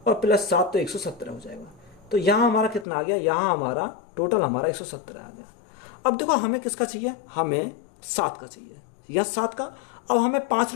और +7 तो 117 हो जाएगा। तो यहाँ हमारा कितना आ गया, यहाँ हमारा टोटल हमारा 117 आ गया। अब देखो हमें किसका चाहिए, हमें 7 का चाहिए, या 7 का। अब हमें 5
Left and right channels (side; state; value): right; drops out; at 2.9 s